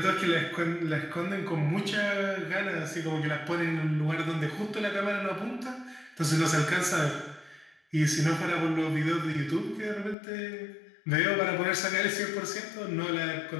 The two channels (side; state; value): right; drops out; at 10.2 s